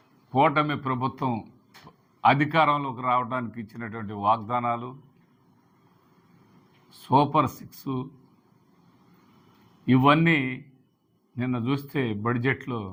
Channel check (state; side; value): identical; both; correlation 1.00